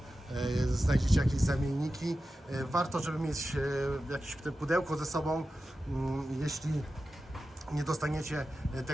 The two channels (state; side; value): normal; both; correlation 0.93